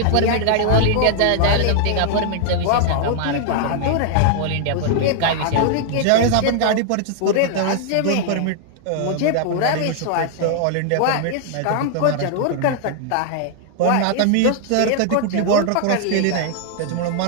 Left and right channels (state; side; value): different; both; correlation 0.00